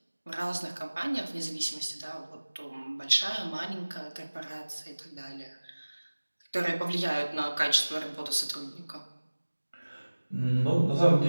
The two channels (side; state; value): both; inverted; correlation -1.00